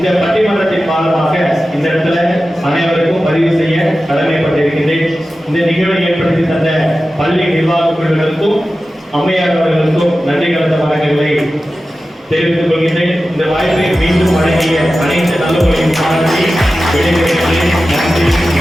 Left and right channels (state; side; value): normal; both; correlation 0.94